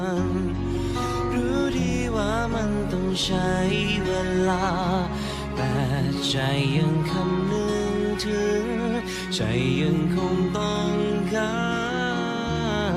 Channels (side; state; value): both; identical; correlation 1.00